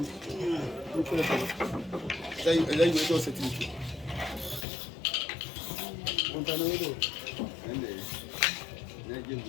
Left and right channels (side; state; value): right; drops out; at 4.7 s